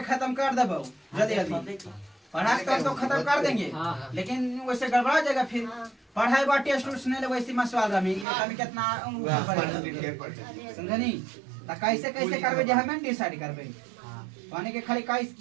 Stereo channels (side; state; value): left; drops out; at 8.2 s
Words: खत्म कर देबो जल्दी जल्दी पढ़ा के तो खत्म कर देंगे लेकिन वैसे गड़बड़ा जाएगा फिर पढ़ाई बा टेस्ट उस्ट नहीं ले वैसे मसवाल रमी कभी कितना समझनी तो कैसे कैसे करबे जे हमें डिसाइड करबे पानी के खाली काई